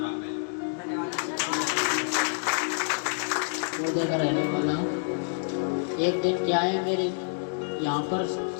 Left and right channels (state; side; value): silent; right; 60 dB below the other